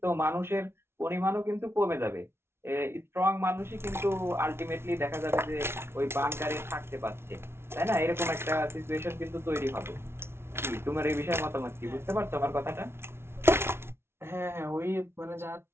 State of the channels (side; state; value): left; late; 0.12 ms